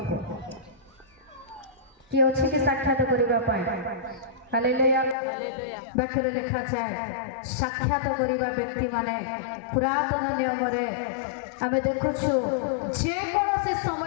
କିଏ ଅଛି କି ସାକ୍ଷାତ କରିବା ପାଇଁ? ହାଲେଲୁୟା। ବାକ୍ୟରେ ଲେଖାଯାଏ ସାକ୍ଷାତ କରିବା ବ୍ୟକ୍ତିମାନେ ପୁରାତନ ନିୟମରେ ଆମେ ଦେଖୁଛୁ ଯେକୌଣସି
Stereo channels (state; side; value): drops out; right; at 5.2 s